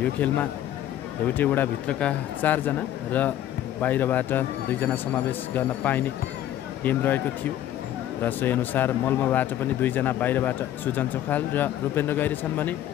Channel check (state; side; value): quieter; right; 12.1 dB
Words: यो खेलमा एउटै वडाभित्रका 4 जना र बाहिरबाट 2 जना समावेश गर्न पाइने नियम रहेको थियो र सोही अनुसार मलमाबाट पनि 2 जना बाहिरबाट सुजन चोखाल र रूपेन्द्र गैरी छन् भने